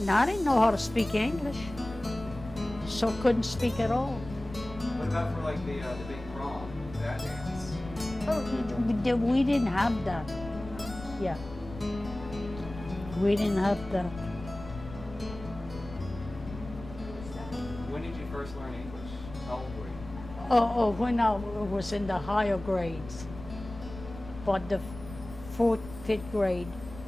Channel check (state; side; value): noise; left; rumble, 14 dB below the sound